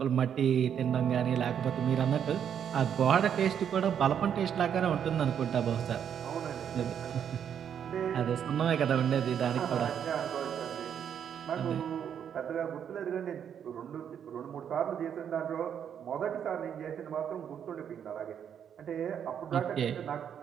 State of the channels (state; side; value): quieter; left; 8.5 dB